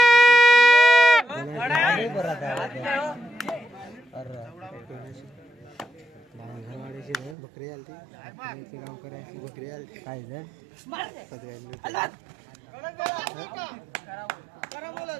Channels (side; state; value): left; drops out; at 7.4 s